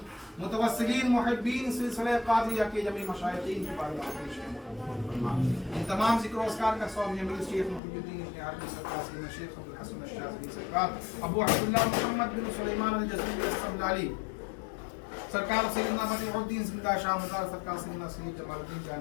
متوسلین محبین سلسلہ قادریہ کے جمیع مشائخین کی بارگاہ میں پیش کیا، مولا قبول فرما۔ ان تمام ذکر و اذکار کا ثواب جمیل شیخ محی الدین ابن عربی سرکار، سیدنا شیخ ابو الحسن الشاذلی سرکار، ابو عبداللہ محمد بن سلیمان الجزری السبلالی سرکار، سیدنا بدیع الدین زندہ شاہ مزار سرکار، سیدنا سید جمال الدین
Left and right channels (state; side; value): drops out; right; at 7.8 s